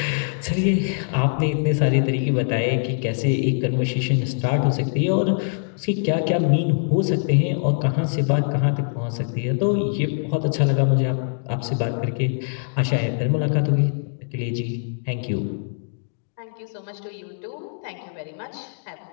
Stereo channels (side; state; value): right; silent; digital silence